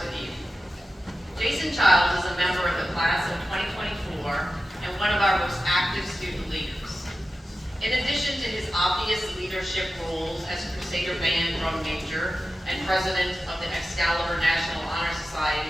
with you. Jason Childs is a member of the class of 2024 and one of our most active student leaders. In addition to his obvious leadership roles as Crusader Band drum major and president of the Excalibur National Honor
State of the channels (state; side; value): normal; both; correlation 0.93